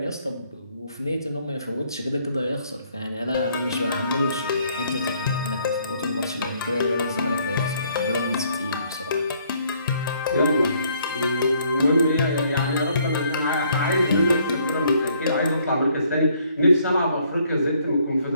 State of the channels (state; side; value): inverted; both; correlation -0.66